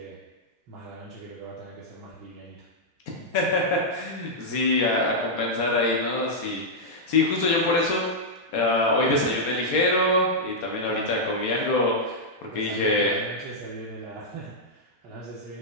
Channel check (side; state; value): both; normal; correlation -0.06